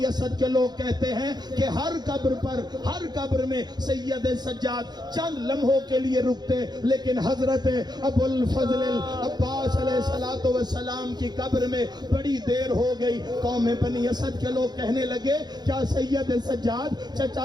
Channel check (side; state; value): left; late; 0.20 ms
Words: اسد کے لوگ کہتے ہیں کہ ہر قبر میں سید سجاد چند لمحوں کے لیے رکتے، لیکن حضرت ابوالفضل العباس علیہ السلام کی قبر میں بڑی دیر ہو گئی. قوم بنی اسد کے لوگ کہنے لگے کیا سید سجاد